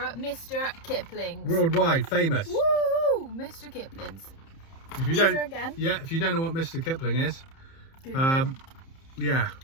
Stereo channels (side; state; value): right; late; 30 ms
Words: Mr. Kipling's. Worldwide famous. Woo! Mr. Kipling's. If you These don't, are again. yeah, if you don't know what Mr. Kipling is, Google it. yeah,